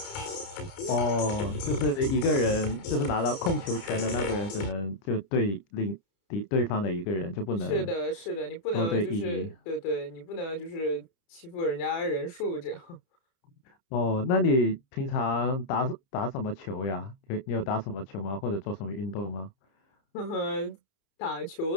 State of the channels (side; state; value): right; late; 30 ms